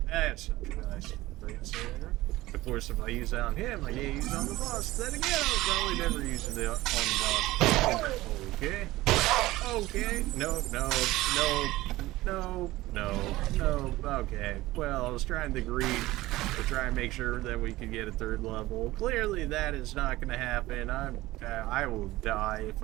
that's nice. Of course, if I use that on him, I can't use it on the boss. Then again, I'll probably never use it on the boss. Okay. Okay. No. Okay. Well, I was trying to greed to try and make sure that we could get a 3rd level. Clearly, that is not going to happen. I will die if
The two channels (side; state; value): left; quieter; 17.8 dB